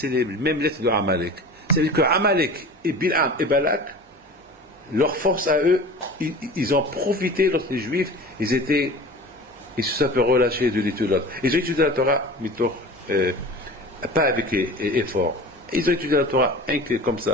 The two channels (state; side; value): normal; both; correlation 0.37